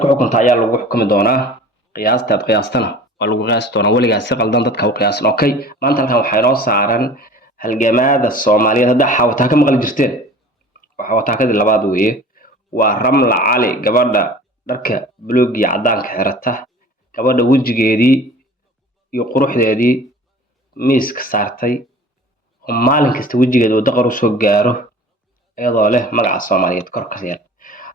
ku xukunta ayaa lagu xukumi doonaa qiyaastaad qiyaastana waa lagu qiyaasi doonaa weligaas si qaldan dadka u qiyaasan okay maanta halkan waxaa inoo saaran halgamaada Soomaaliyeed hadda xawataa ka maqli jirteen waxa wataakadii labaad weeye waa Ramla Cali gabadha dharka buluug iyo cadaanka xirata gabadha wajigeedii iyo quruxdeedii miiska saartay oo maalin kasta wajigeeda uu daqar u soo gaaro iyadoo leh magaca Soomaaliyeed kor ka yar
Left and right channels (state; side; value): normal; both; correlation 0.44